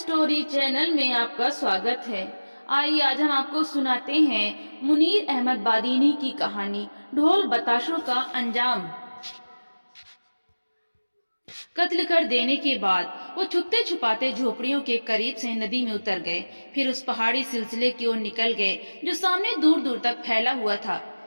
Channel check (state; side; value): inverted; both; correlation -1.00